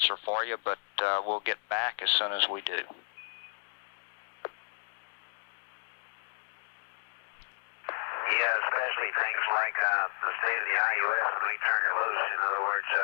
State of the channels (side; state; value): right; silent; digital silence